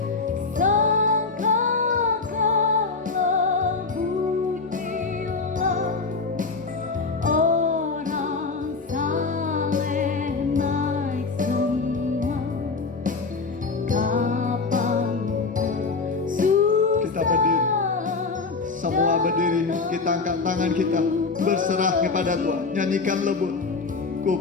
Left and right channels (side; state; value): right; quieter; 4.2 dB